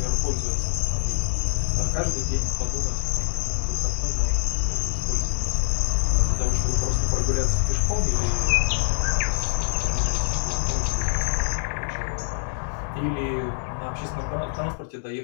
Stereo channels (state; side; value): silent; right; digital silence